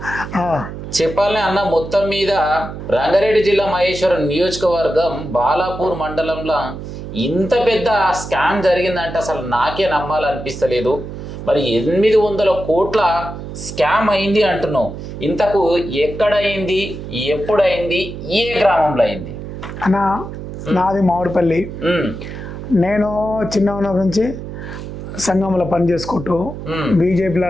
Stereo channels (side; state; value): right; noise; hum, 9 dB below the sound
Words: చెప్పాలనే అన్న, మొత్తం మీద రంగారెడ్డి జిల్లా మహేశ్వరం నియోజకవర్గం బాలాపూర్ మండలంలో ఇంత పెద్ద స్కామ్ జరిగిందంటే అసలు నాకే నమ్మాలనిపిస్తలేదు. మరి 800 కోట్ల స్కామ్ అయింది అంటున్నావు. ఇంతకు ఎక్కడైంది, ఎప్పుడైంది, ఏ గ్రామంలో అయింది? అన్న నాది మామిడిపల్లి. నేను చిన్న ఉన్నప్పటి నుంచి సంఘంలో పని చేసుకుంటూ బీజేపీలో